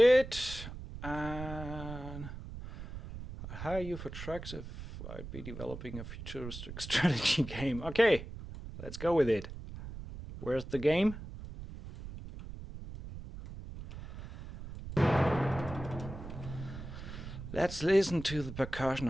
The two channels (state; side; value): noise; right; rumble, 11 dB below the sound